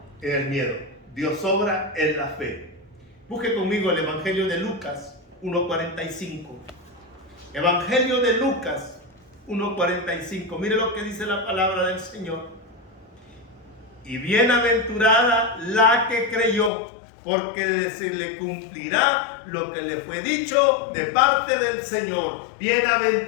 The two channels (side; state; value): right; drops out; at 16.7 s